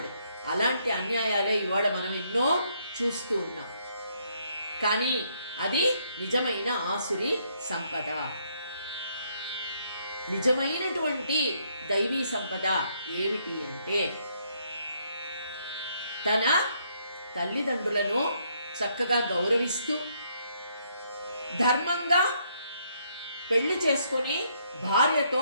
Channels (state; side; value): inverted; both; correlation -0.72